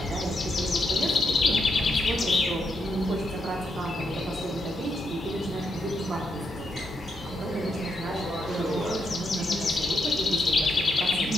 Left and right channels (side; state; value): both; normal; correlation 0.80